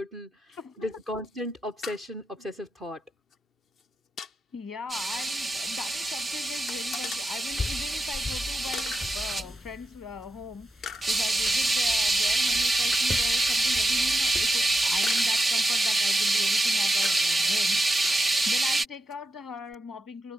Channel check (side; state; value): both; normal; correlation 0.88